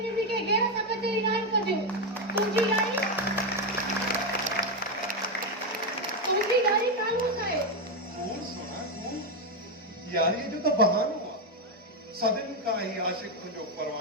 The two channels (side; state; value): both; normal; correlation 0.06